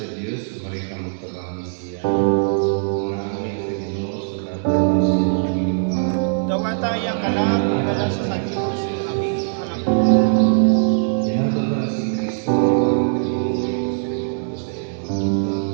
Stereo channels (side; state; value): left; silent; digital silence